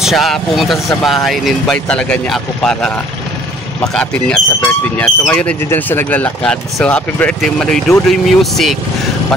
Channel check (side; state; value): both; normal; correlation 0.57